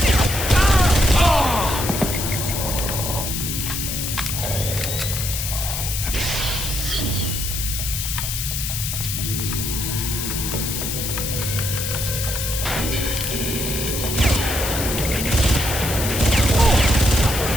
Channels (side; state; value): left; noise; hiss, 3 dB below the sound